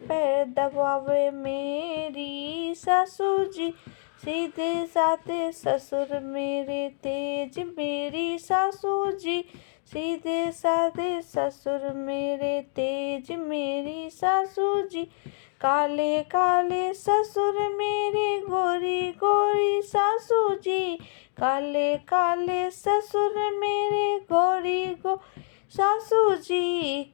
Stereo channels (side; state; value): right; silent; 61 dB below the other